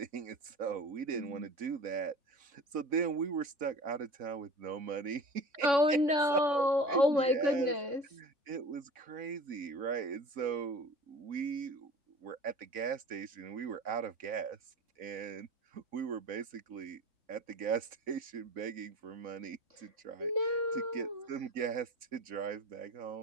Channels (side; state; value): left; late; 4.0 ms